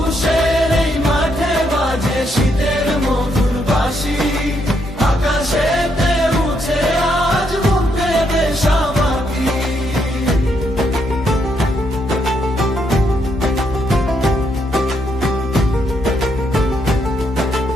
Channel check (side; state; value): both; normal; correlation 0.76